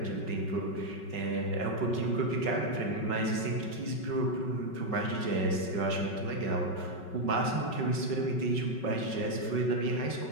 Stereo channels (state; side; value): late; right; 5.4 ms